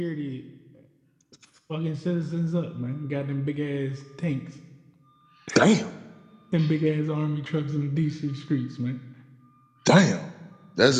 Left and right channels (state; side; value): identical; both; correlation 1.00